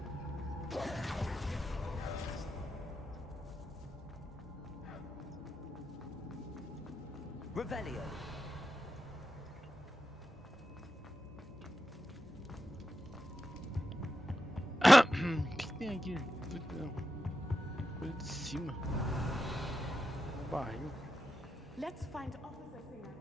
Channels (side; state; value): both; normal; correlation 0.89